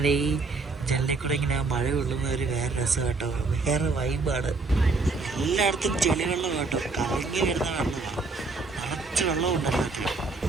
ഈ ജനലിൽ കൂടെ ഇങ്ങനെ ആ മഴ കൊള്ളുന്ന ഒരു വേറെ രസം കേട്ടോ. വേറെ വൈബാണ്. എല്ലായിടത്തും ചെളി വെള്ളം കേട്ടോ. കലങ്ങി വരുന്ന വെള്ളമാണ്. നിറച്ച് വെള്ളം ഉണ്ടല്ലോ.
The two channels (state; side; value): quieter; left; 3.8 dB